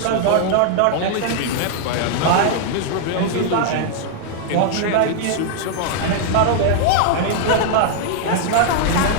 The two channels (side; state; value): both; different; correlation -0.01